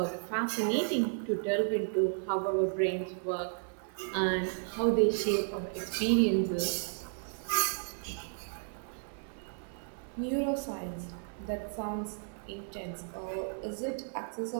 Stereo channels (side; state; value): left; silent; 55 dB below the other